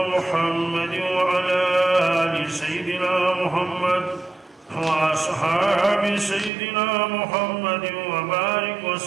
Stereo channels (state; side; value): drops out; left; at 6.5 s